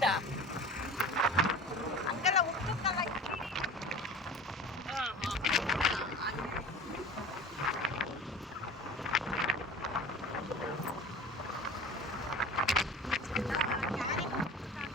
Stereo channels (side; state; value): both; normal; correlation 0.38